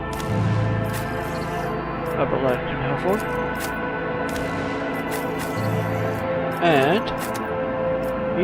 Aberlad can have one. And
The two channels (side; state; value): both; identical; correlation 1.00